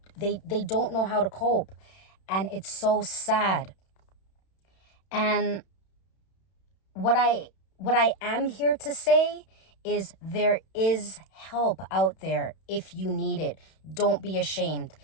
they don't know how to cope. And it's so sad. And what I am here to say is there is help out there if you need it. Don't be ashamed,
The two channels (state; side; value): late; right; 31 ms